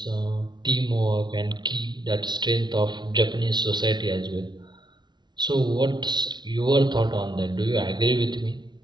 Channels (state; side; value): late; left; 0.21 ms